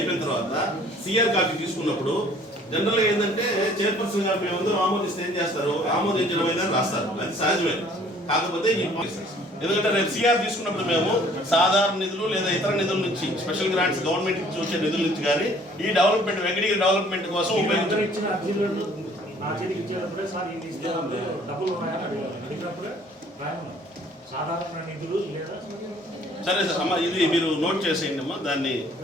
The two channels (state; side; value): normal; both; correlation 0.56